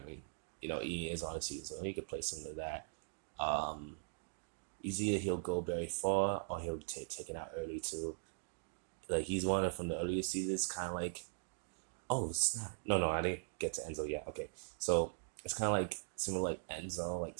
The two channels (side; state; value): left; silent; digital silence